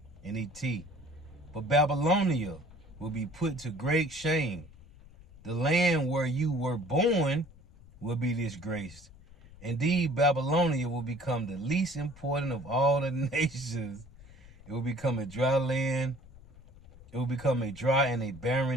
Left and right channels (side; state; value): left; noise; rumble, 21 dB below the sound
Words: NET. But Babylonia will be put to great shame. The land where you were born will be disgraced. Indeed, Babylonia will become the least important of all the nations. It will become a dry land. It will become a dry and a